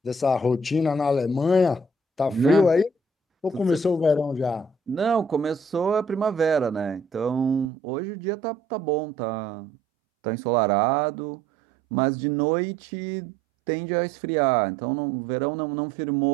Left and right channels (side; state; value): left; drops out; at 7.7 s